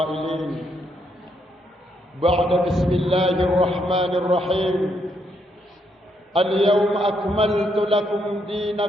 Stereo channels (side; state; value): both; normal; correlation 0.76